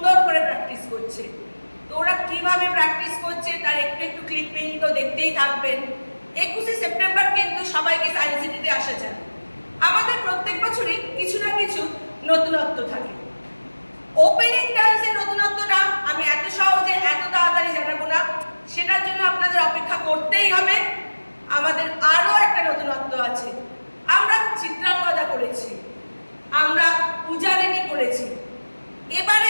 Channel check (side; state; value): both; inverted; correlation -1.00